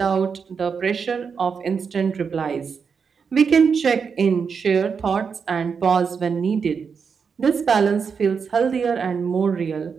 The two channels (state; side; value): quieter; left; 6.0 dB